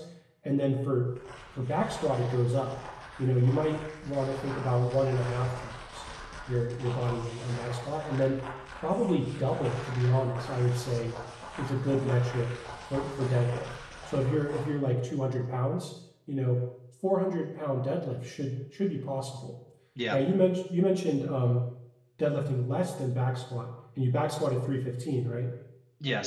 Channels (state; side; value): identical; both; correlation 1.00